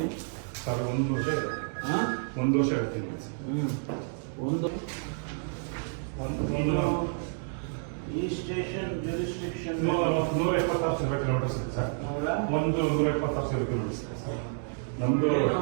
1 ವರ್ಷ ಇದೆ. ಹಾಂ 1 ವರ್ಷ ಹೇಳ್ತೀನಿ ಈ ಸ್ಟೇಷನ್ ಜುರಿಸ್ಟಿಕ್ಷನ್ 176 ಕಿಲೋಮೀಟರ್ಸ್ ಇದೆ ಸರ್. 176 ಕಿಲೋಮೀಟರ್ಸ್ ಇದೆ ಸರ್. ನಮ್ದು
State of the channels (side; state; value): left; silent; 56 dB below the other